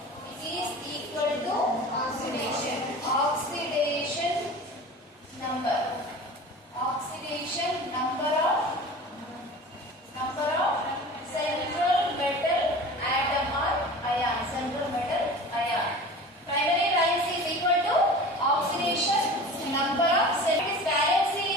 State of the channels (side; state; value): both; normal; correlation 0.37